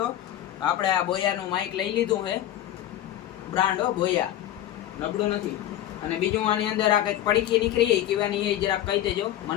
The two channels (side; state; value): right; quieter; 12.5 dB